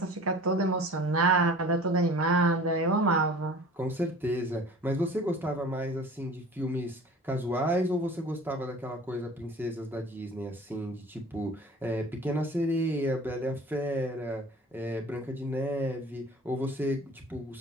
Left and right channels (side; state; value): both; normal; correlation 0.44